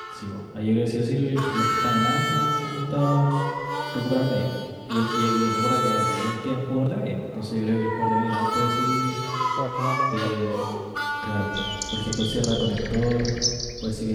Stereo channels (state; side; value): identical; both; correlation 1.00